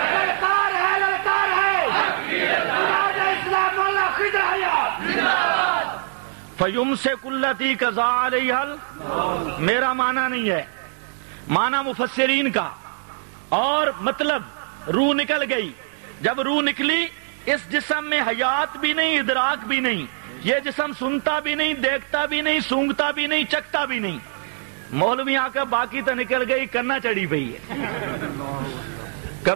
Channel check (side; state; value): left; silent; 64 dB below the other